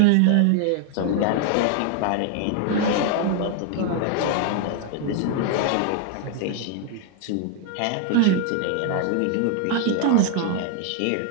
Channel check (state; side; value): different; both; correlation 0.00